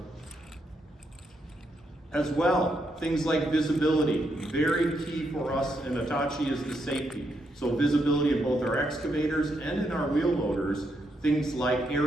As well, things like visibility, very key for us in Hitachi is the safety. So visibility in both our excavators and in our wheel loaders. Things like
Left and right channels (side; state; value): both; normal; correlation 0.79